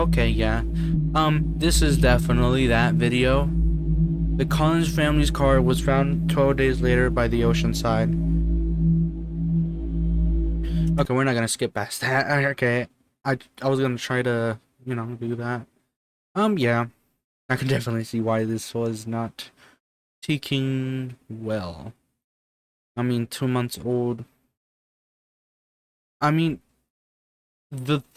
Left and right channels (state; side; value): identical; both; correlation 1.00